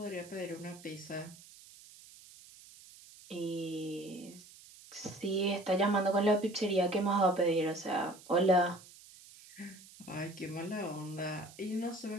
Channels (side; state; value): right; noise; hiss, 20 dB below the sound